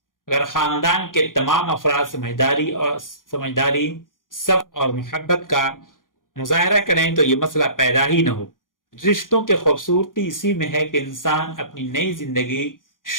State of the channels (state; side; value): late; right; 0.90 ms